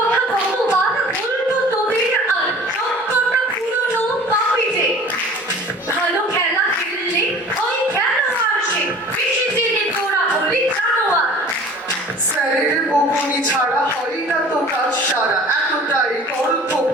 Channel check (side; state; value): both; normal; correlation 0.45